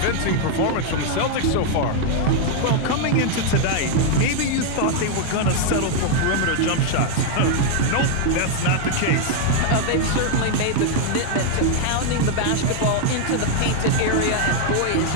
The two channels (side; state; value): both; different; correlation 0.00